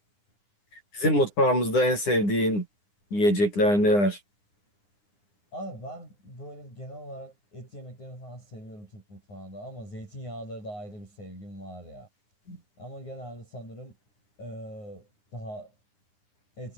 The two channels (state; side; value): late; right; 9.9 ms